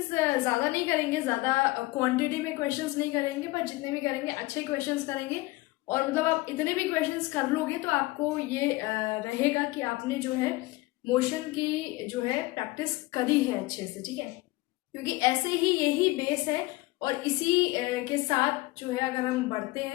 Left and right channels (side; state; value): right; quieter; 20.7 dB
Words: ज़्यादा नहीं करेंगे, ज़्यादा क्वांटिटी में क्वेश्चंस नहीं करेंगे, पर जितने भी करेंगे अच्छे क्वेश्चंस करेंगे। और मतलब आप इतने भी क्वेश्चंस कर लोगे तो आपको ये रहेगा कि आपने जो है मोशन की जो है प्रैक्टिस करी है अच्छे से, ठीक है। क्योंकि ऐसे ही यही बेस है और इसी के साथ जो है अगर हम बढ़ते